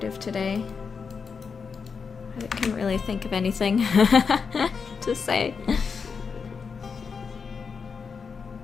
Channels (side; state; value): right; quieter; 5.6 dB